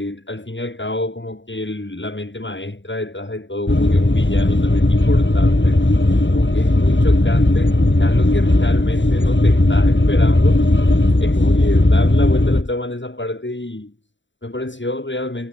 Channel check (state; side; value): late; right; 0.54 ms